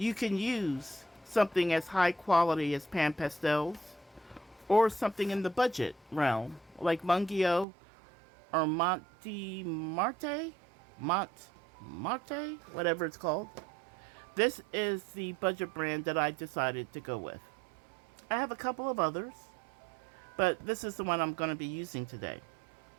can use something as high quality as pan pastels or something in the budget realm like Mungyo or Marte, whatever it's called. This is the budget brand that I decided to go with. I have a couple of others, but this is the one I'm going to be using today.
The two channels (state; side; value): drops out; left; at 7.7 s